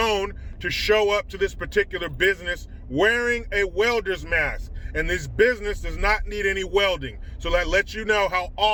to show up to this particular business wearing a welder's mask. And this business does not need any welding. So that lets you know how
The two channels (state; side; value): identical; both; correlation 1.00